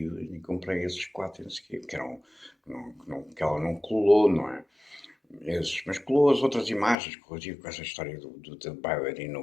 e comprei esses 4, não sei o quê, que ela não colou, não é? Mas colou as outras imagens, corrigiu com essa história da bailarina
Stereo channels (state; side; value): drops out; right; at 7.0 s